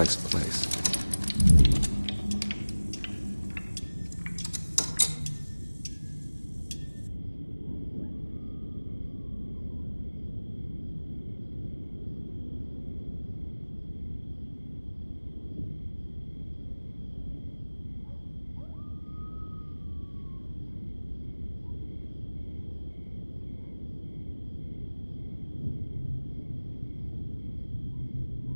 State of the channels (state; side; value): inverted; both; correlation -1.00